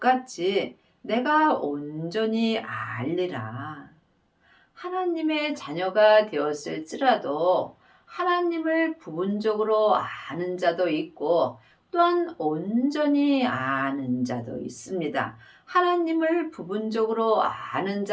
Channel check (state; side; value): identical; both; correlation 1.00